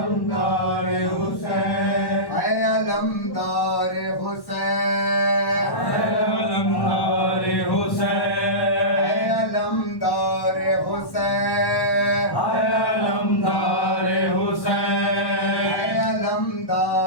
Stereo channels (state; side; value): late; right; 1.1 ms